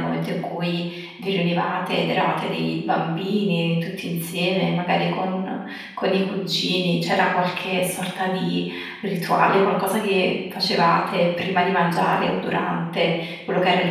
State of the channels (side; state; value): both; identical; correlation 1.00